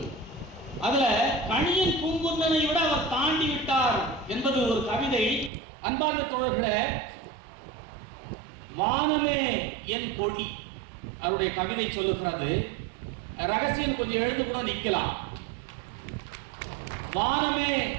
அதுல கணியன் பூங்குன்னனை விட அவர் தாண்டி விட்டார் என்பது ஒரு கவிதை. அன்பார்ந்த தோழர்களே, வானமே என் கொடி அவருடைய கவிதை சொல்லுகிறது. ரகசியம் கொஞ்சம் எழுந்து கூட நிக்கலாம். வானமே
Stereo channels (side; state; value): left; drops out; at 5.5 s